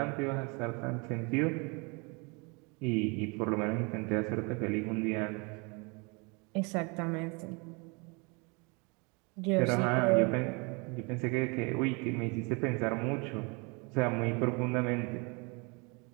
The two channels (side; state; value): left; quieter; 30.5 dB